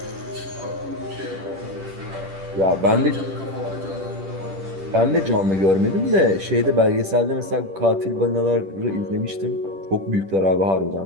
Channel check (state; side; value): late; left; 10 ms